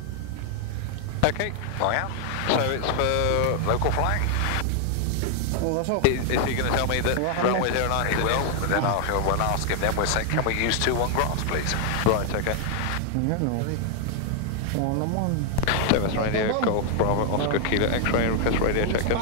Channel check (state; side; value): different; both; correlation 0.00